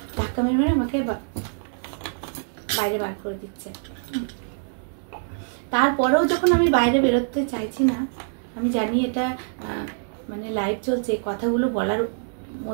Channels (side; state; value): left; silent; 62 dB below the other